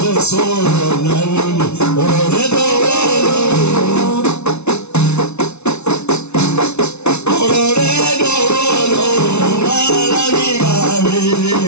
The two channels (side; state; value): right; late; 0.81 ms